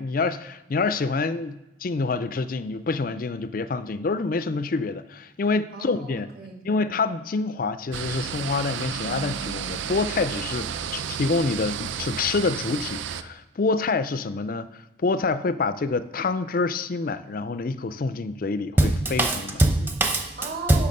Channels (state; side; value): normal; both; correlation 0.37